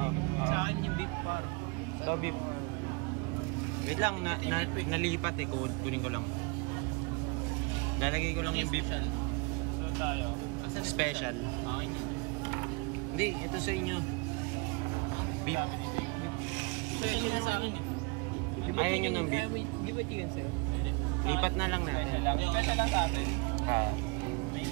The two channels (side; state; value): left; quieter; 29.8 dB